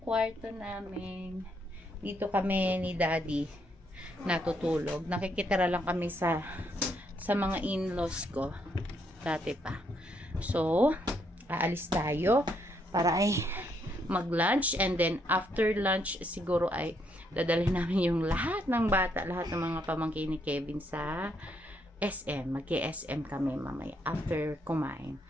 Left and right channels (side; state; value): both; normal; correlation 0.74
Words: kwarto namin. Dito kami ni Daddy natutulog. Nakikitira lang kami sa mga in-laws ko. Dati pa. So, aalis tayo para ay mag-lunch. And then, after lunch, siguro ay dadalhin namin yung lahat ng bata, lahat ng mga pamangkin ni Kevin sa SM. Mag-SM kami mamaya after kumain.